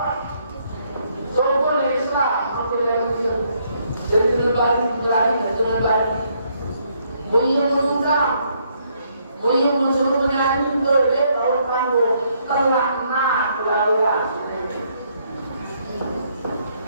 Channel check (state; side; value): inverted; both; correlation -0.71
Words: Soal Islam hampir Indonesia. Jadi lebih berani dengan badi. Mulia mengundang, mulia mensuruh menyanyi boleh kalau kamu telah nak laluan.